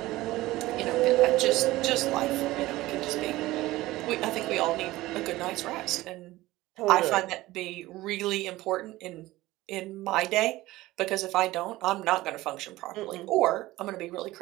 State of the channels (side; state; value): left; quieter; 17.8 dB